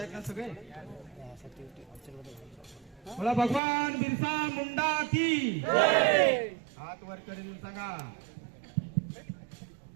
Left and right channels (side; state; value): left; drops out; at 3.6 s